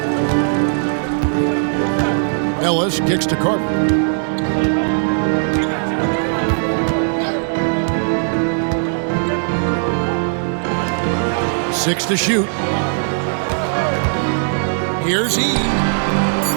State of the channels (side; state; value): left; silent; 61 dB below the other